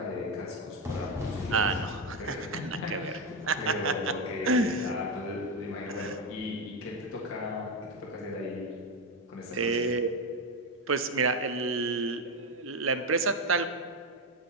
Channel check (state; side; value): normal; both; correlation 0.11